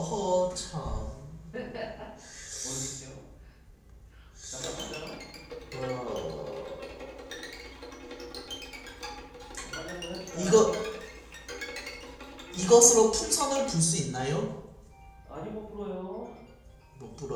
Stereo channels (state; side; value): identical; both; correlation 1.00